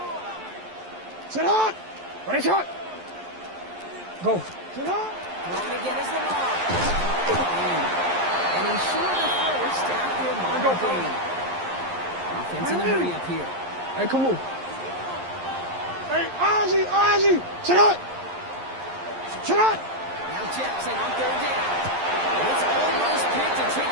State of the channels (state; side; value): late; left; 11 ms